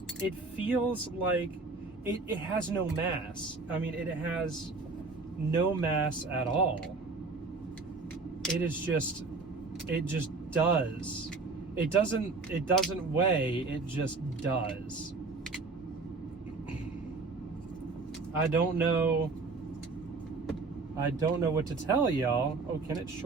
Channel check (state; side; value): quieter; left; 3.9 dB